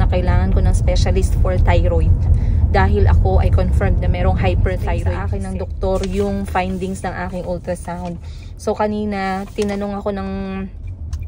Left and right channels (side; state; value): both; identical; correlation 1.00